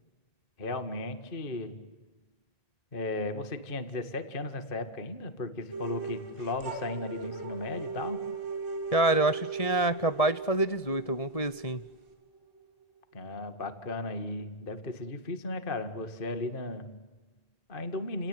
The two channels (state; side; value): late; right; 1.7 ms